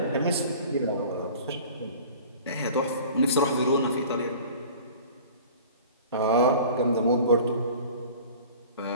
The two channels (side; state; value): both; inverted; correlation -0.44